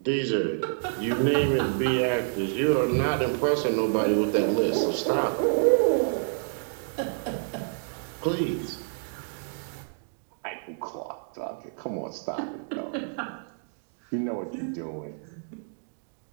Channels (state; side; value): silent; left; digital silence